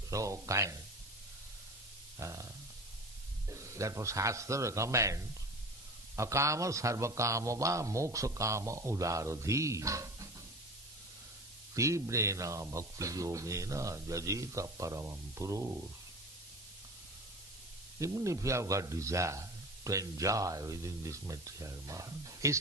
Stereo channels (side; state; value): both; normal; correlation 0.34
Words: so kind. Therefore Shastra recommends akama sarvakama va moksha kama udaradhi tibrena bhakti yogena jajita paramam purush. Even if you have got desire to enjoy within this material world,